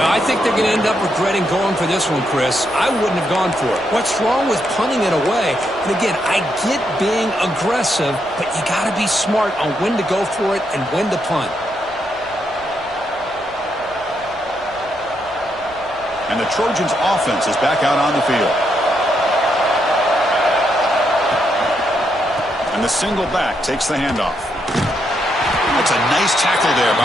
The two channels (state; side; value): noise; left; rumble, 25 dB below the sound